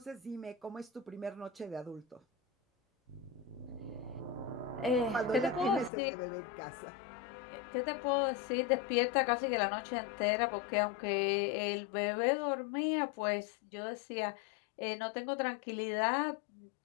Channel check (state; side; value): drops out; right; at 5.9 s